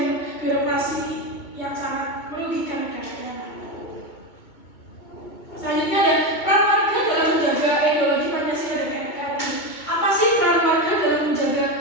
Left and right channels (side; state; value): right; late; 2.2 ms